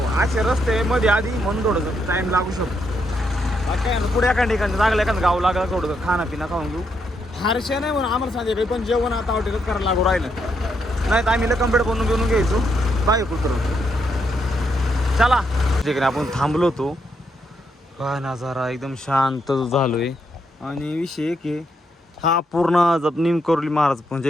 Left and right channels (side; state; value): both; normal; correlation 0.78